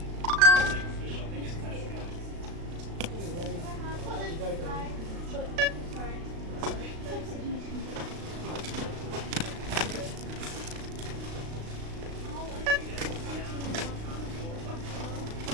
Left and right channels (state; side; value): late; left; 36 ms